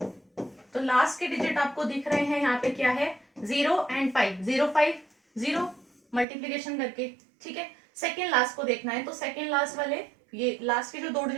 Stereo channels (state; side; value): drops out; left; at 6.2 s